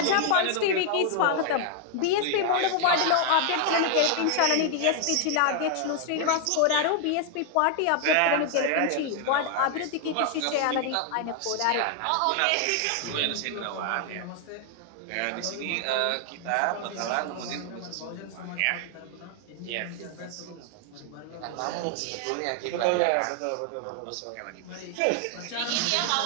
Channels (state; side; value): different; both; correlation 0.00